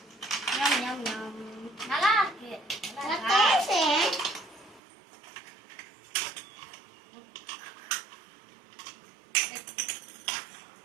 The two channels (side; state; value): left; drops out; at 4.8 s